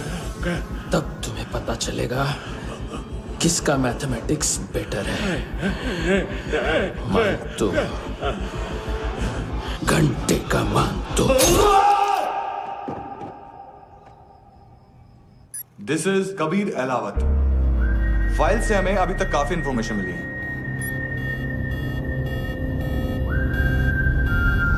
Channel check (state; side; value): identical; both; correlation 1.00